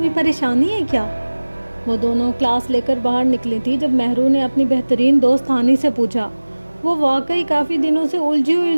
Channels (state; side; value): inverted; both; correlation -1.00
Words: پریشانی ہے کیا؟ وہ دونوں کلاس لے کر باہر نکلی تھی جب مہرو نے اپنی بہترین دوست ہانی سے پوچھا۔ وہ واقعی کافی دنوں سے